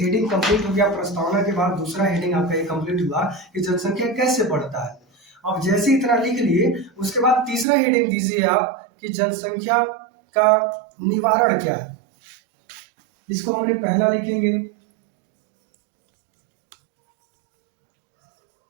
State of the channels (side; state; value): left; drops out; at 7.7 s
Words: कंप्लीट हो गया, प्रस्तावना के बाद दूसरा हेडिंग आपका ये कंप्लीट हुआ कि जनसंख्या कैसे बढ़ता है। अब जैसे इतना लिख लिए, उसके बाद तीसरा हेडिंग दीजिए आप कि जनसंख्या का निवारण क्या है। इसको हमने पहला लिखेंगे